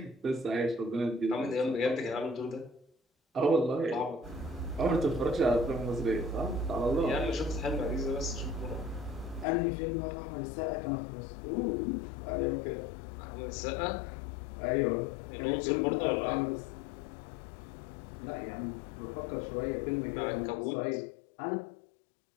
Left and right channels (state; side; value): drops out; right; at 9.5 s